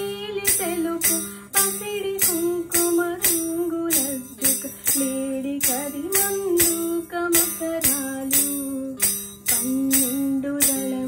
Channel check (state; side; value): identical; both; correlation 1.00